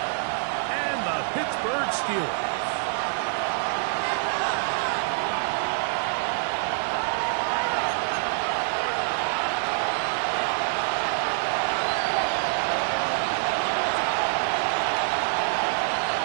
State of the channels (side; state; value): left; silent; 61 dB below the other